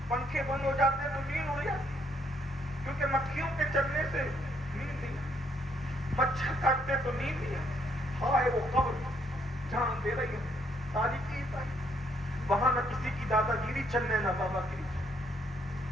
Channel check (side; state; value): both; normal; correlation 0.70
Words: پنکھے بند ہو جاتے تو نیند اڑ جاتی, کیونکہ مکھیوں کے چلنے سے نیند نہیں, مچھر کاٹتے تو نیند نہیں. ہائے وہ قبر جان دے رہی ہے, تاریخی وہاں نہ کسی کی دادا گیری چلنے نہ بابا گیری,